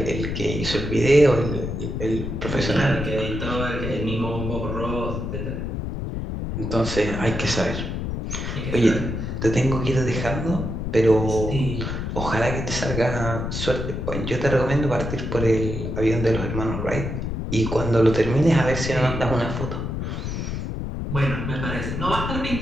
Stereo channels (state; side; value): noise; left; rumble, 4 dB below the sound